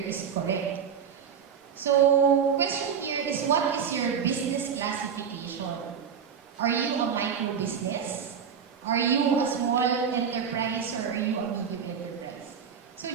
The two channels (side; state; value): left; quieter; 7.3 dB